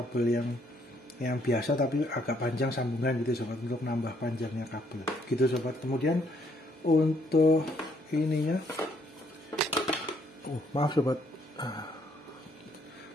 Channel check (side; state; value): both; normal; correlation 0.69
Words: yang biasa tapi agak panjang sambungan gitu sobat, untuk nambah panjangnya kabel gitu sobat. Kemudian untuk ininya, maaf sobat,